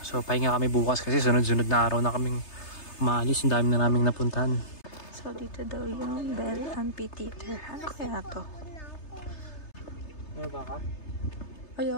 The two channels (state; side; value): late; right; 3.3 ms